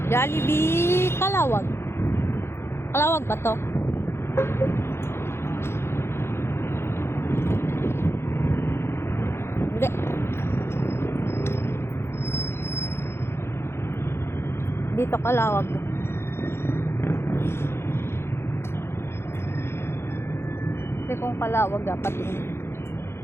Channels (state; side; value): late; right; 0.12 ms